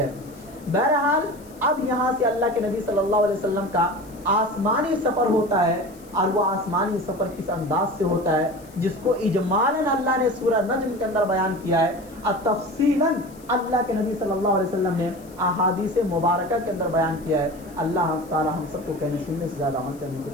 بہرحال اب یہاں سے اللہ کے نبی صلی اللہ علیہ وسلم کا آسمانی سفر ہوتا ہے, اور وہ آسمانی سفر کس انداز سے ہوتا ہے جس کو اجمالاً اللہ نے سورہ نجم کے اندر بیان کیا ہے, اور تفصیلاً اللہ کے نبی صلی اللہ علیہ وسلم نے احادیث مبارکہ کے اندر بیان کیا ہے. اللہ تعالی ہم سب کو کہنے سننے سے زیادہ عمل کرنے کی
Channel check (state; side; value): noise; left; hiss, 25 dB below the sound